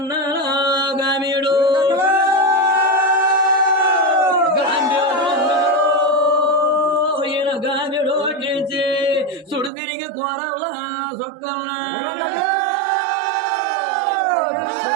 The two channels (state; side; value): drops out; left; at 9.7 s